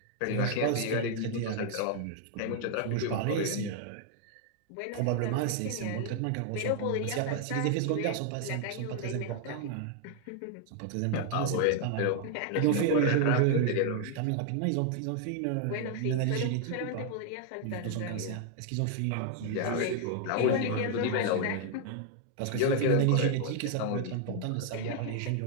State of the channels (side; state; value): both; different; correlation 0.00